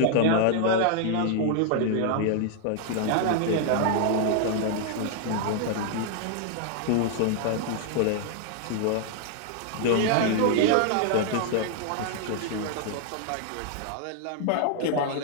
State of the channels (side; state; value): both; different; correlation 0.00